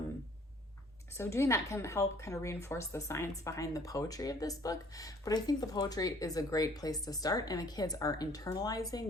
So doing that can help kind of reinforce the science behind the poetry of this book. But I think the poetry is a great place to start, and the kids are internalizing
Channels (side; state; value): both; normal; correlation 0.57